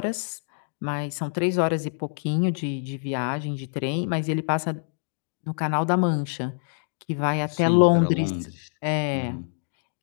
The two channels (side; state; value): right; silent; digital silence